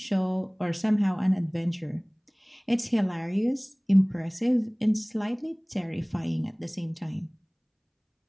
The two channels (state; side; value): identical; both; correlation 1.00